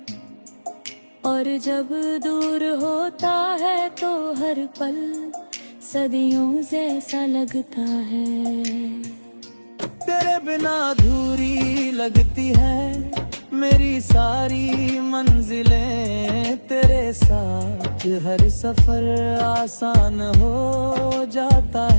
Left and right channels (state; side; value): inverted; both; correlation -1.00